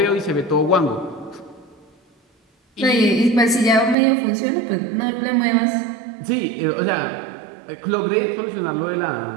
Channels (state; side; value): drops out; left; at 4.0 s